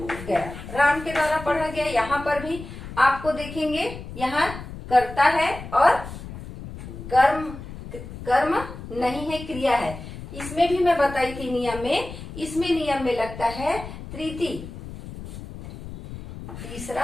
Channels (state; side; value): noise; left; rumble, 12 dB below the sound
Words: गया, राम के द्वारा पढ़ा गया। यहाँ पर भी आपको देखेंगे यहाँ कर्ता है और कर्म नहीं है, क्रिया है। इसमें भी मैं बताई थी नियम में, इसमें नियम में लगता है तृतीय,